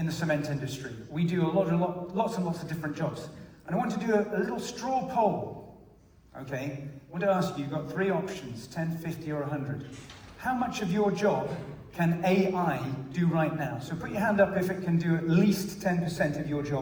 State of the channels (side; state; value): both; identical; correlation 1.00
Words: the cement industry. We do lots and lots of different jobs. And I want to do a little straw poll, okay? I want to ask you, you've got 3 options, 10, 50, or 100. How much of your job can AI do right now? So put your hand up if it can do at least 10% of your